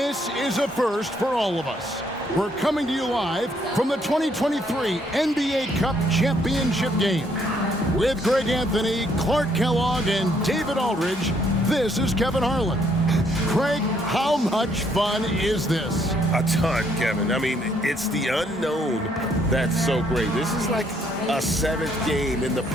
is a first for all of us. We're coming to you live from the 2023 NBA Cup Championship game. With Greg Anthony, Clark Kellogg, and David Aldridge, this is Kevin Harlan. Craig, how much fun is this? A ton, Kevin. I mean, it's the unknown that's so great. This is like a seventh game in the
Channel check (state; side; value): normal; both; correlation 0.69